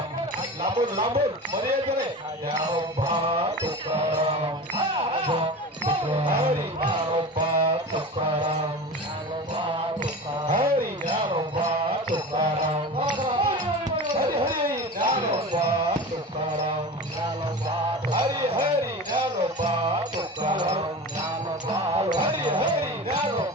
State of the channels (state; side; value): normal; both; correlation 0.31